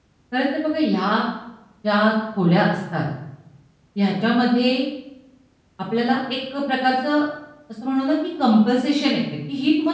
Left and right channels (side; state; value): both; identical; correlation 1.00